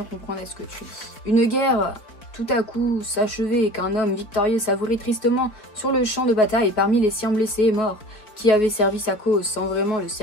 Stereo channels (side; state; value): right; late; 4.7 ms